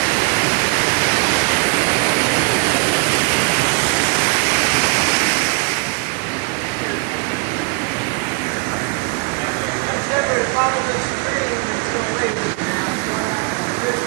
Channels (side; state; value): left; quieter; 31.0 dB